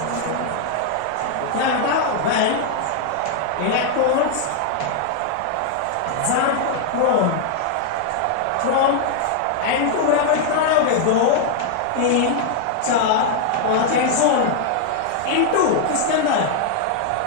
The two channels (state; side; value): different; both; correlation 0.00